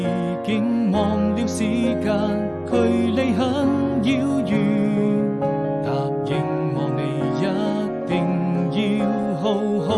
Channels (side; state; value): both; identical; correlation 1.00